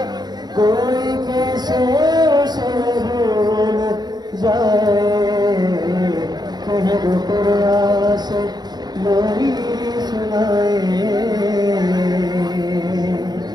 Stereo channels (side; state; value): left; late; 0.20 ms